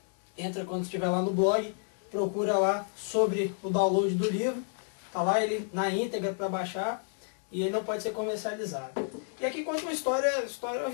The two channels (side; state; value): right; silent; 57 dB below the other